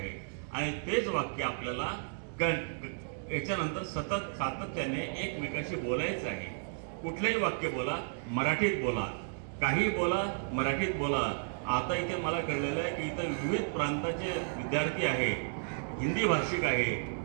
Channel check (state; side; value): silent; left; digital silence